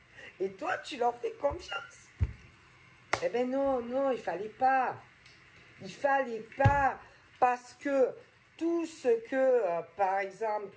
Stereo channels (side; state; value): both; identical; correlation 1.00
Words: Et toi, tu leur fais confiance. Eh ben non, non, il fallait pas. Il fallait pas. Parce que tout ce que, par